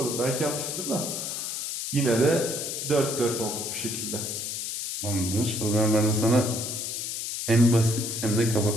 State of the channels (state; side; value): noise; left; hiss, 4 dB below the sound